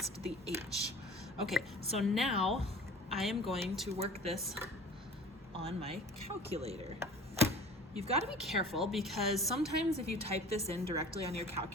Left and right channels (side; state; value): both; normal; correlation 0.43